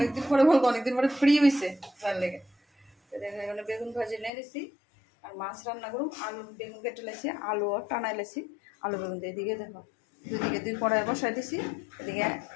পরে বলবো অনেকদিন পরে ফ্রি হয়েছে তার লেগে। তো দেখো এখানে বেগুন ভাজি নিয়ে নিছি। আর মাছ রান্না করুন, আলু বেগুন কেটে লাইছি, আলুও টানাই লাইছি। আলু বেগুন দিয়ে এদিকে দেখো দুদিকে 2 কড়াই বসাই দিছি। এদিকে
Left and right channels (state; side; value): drops out; right; at 4.3 s